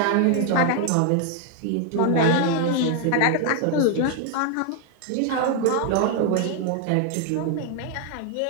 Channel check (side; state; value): both; different; correlation 0.00